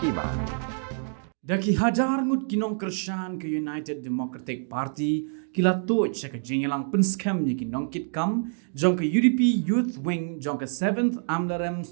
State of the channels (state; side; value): silent; left; digital silence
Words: Daki hajar ngut kinong kersan ke United Democratic Party kila tuj sa kajingilang Pynskhem ni Nongkitkam jong ke UDP Youth Wing jong ke 7th Amlarem